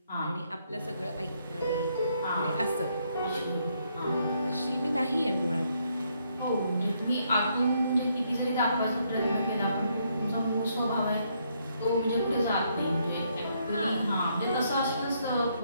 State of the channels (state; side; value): inverted; both; correlation -0.73